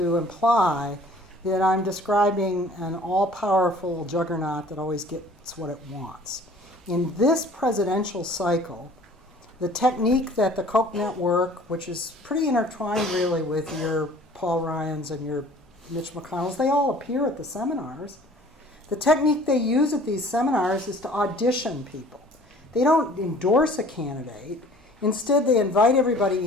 imply that I'm describing an all-powerful juggernaut that always gets what it wants. In this presidential cycle, the technique that the Koch Network, which is pretty intertwined really with your Paul Ryans and your Mitch McConnells, they all appear at the seminars. The technique they use at these seminars is to audition people. They don't endorse a candidate. Instead, they invite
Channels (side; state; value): both; normal; correlation 0.50